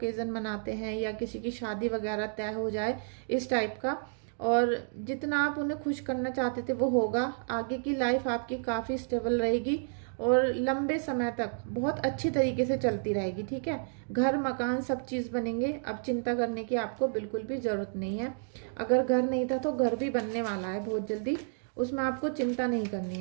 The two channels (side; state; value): left; silent; digital silence